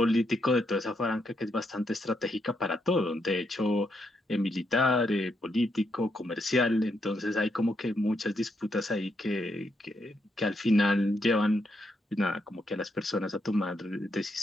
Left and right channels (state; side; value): normal; both; correlation 0.79